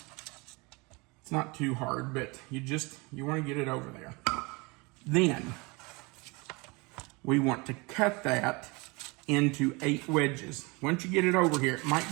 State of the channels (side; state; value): left; quieter; 26.9 dB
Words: It's not too hard, but you want to get it over there. Then we want to cut that into 8 wedges. Once you get it over here, it might